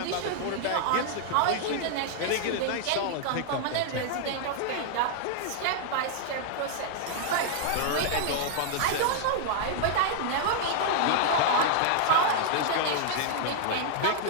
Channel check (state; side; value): different; both; correlation -0.01